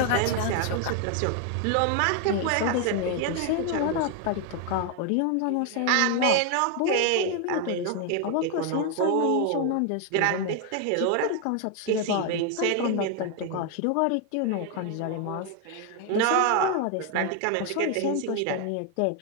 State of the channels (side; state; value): both; different; correlation 0.01